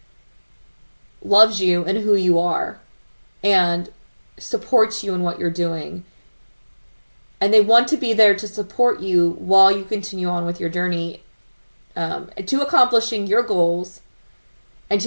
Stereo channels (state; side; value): inverted; both; correlation -1.00